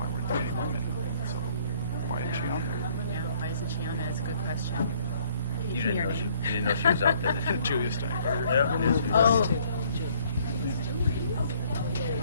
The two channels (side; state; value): both; inverted; correlation -0.61